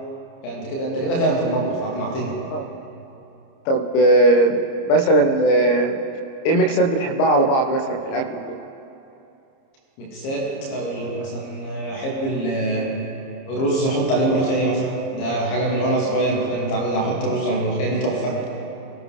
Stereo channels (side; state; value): right; late; 30 ms